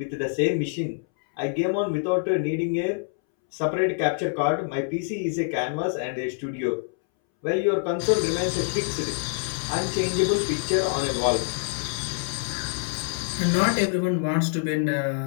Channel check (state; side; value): silent; right; 61 dB below the other